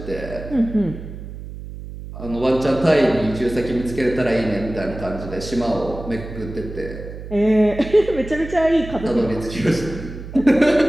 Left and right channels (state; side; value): noise; right; hum, 11 dB below the sound